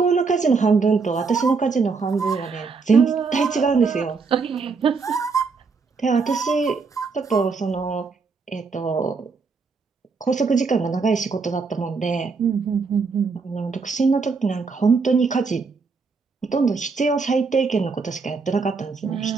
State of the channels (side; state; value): left; quieter; 4.7 dB